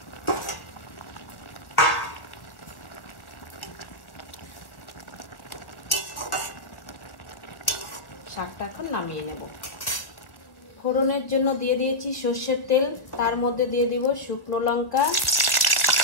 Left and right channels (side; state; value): right; late; 1.5 ms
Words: শাকটা এখন নামিয়ে নেব। ফোড়নের জন্য দিয়ে দিয়েছি সর্ষের তেল, তার মধ্যে দিয়ে দিব শুকনো লঙ্কা,